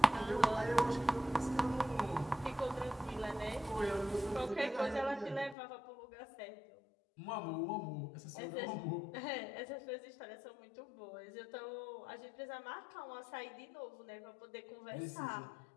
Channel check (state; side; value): drops out; right; at 5.6 s